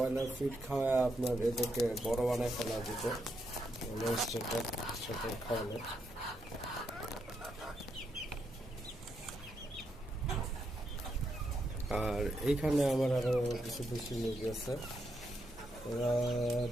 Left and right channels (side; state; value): both; normal; correlation 0.80